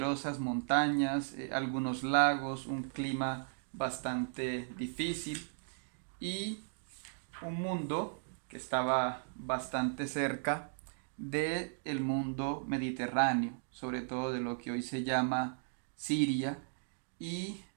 montañas, algunos lagos, un clima bastante difícil y un mundo que estaba bastante cerca del mundo mediterráneo, sobre todo de lo que hoy se llama Siria, y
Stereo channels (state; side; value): silent; left; digital silence